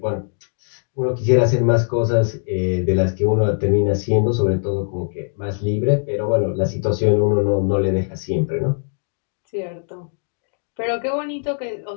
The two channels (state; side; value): silent; right; 65 dB below the other